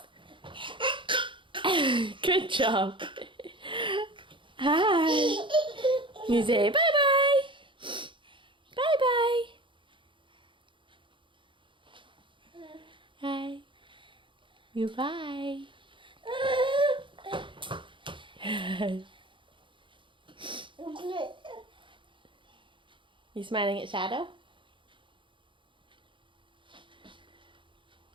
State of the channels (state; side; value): late; left; 0.24 ms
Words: Good job! Hi! You say bye-bye! Bye-bye! Hi. Goodbye. You smiling at Shadow?